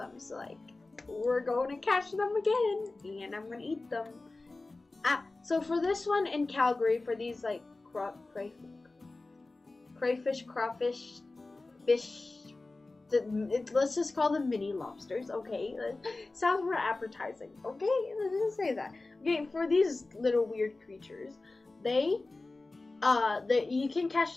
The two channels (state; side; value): quieter; right; 3.3 dB